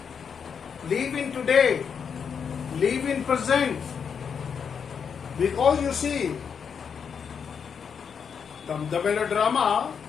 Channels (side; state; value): right; quieter; 6.8 dB